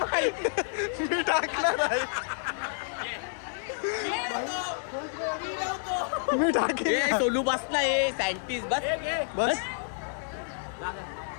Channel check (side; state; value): right; silent; digital silence